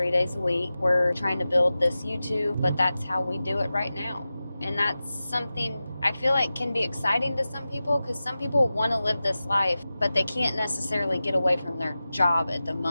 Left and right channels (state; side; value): inverted; both; correlation -0.95